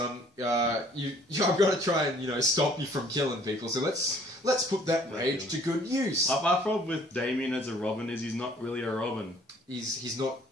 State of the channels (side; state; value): both; normal; correlation 0.57